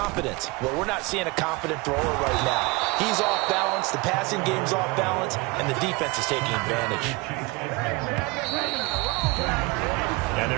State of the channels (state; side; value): quieter; left; 25.1 dB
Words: Well, we're not seeing a confident thrower right now. He's off balance, the passing game's off balance, and the defense is taking advantage. And